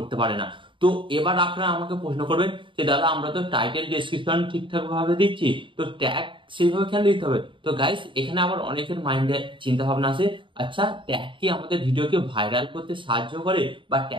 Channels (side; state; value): left; late; 0.24 ms